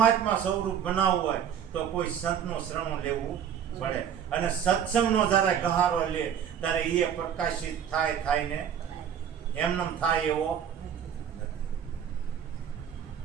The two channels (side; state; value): left; quieter; 8.7 dB